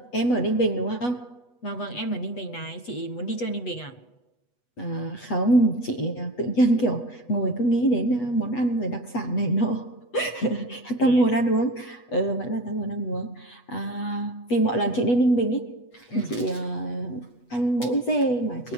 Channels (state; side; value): late; right; 8.2 ms